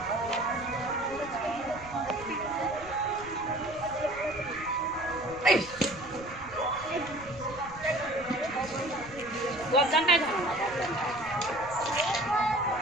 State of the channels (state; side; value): noise; right; rumble, 18 dB below the sound